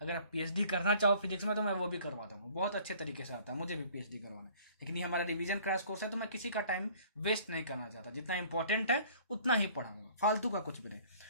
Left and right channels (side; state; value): both; inverted; correlation -0.53